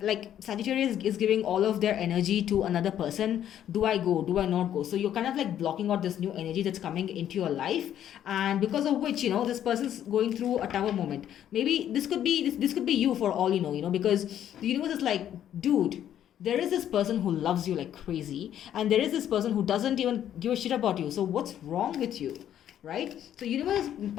Sagittarius is giving all of their energy to another person. Do I go? Do I not go? So you're kind of blocking out this new energy that's coming into your life, and because of which, this person's going through a tower moment. Maybe this could be you, for all you know, because the universe is like, dude, there is this person who loves you like crazy, and there is this person who doesn't even give a shit about you. So what's wrong with you, right? So universe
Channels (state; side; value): quieter; right; 10.6 dB